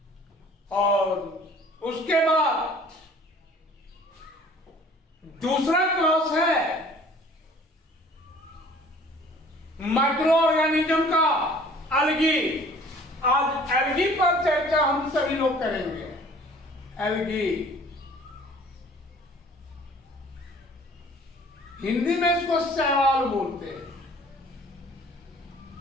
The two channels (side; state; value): both; normal; correlation 0.51